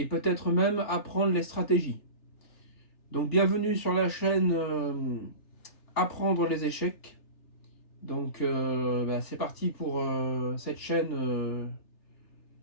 peut-être même apprendre les stratégies. Donc bienvenue sur la chaîne Apprendre les échecs. Donc c'est parti pour cette chaîne.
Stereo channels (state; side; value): late; right; 3.3 ms